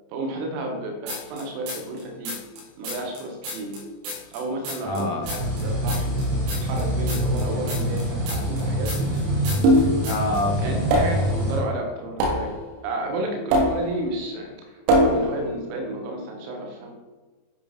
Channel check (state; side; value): late; left; 30 ms